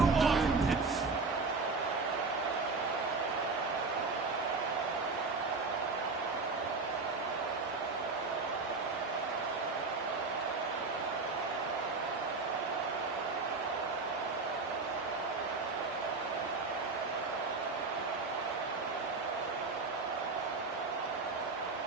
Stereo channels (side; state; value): left; quieter; 4.1 dB